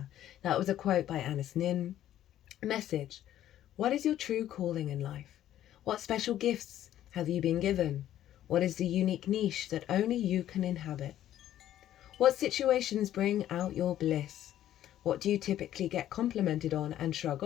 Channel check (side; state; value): right; quieter; 12.2 dB